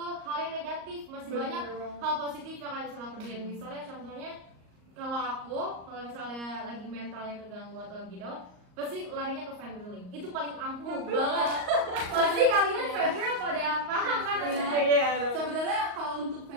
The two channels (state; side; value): late; left; 38 ms